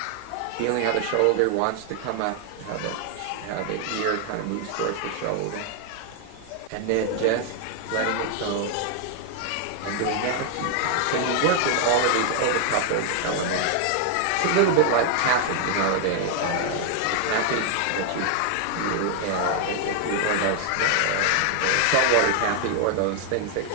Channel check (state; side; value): different; both; correlation 0.00